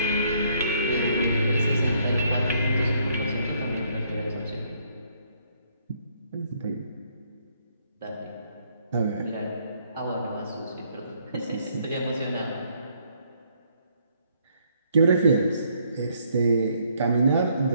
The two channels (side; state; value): both; inverted; correlation -0.69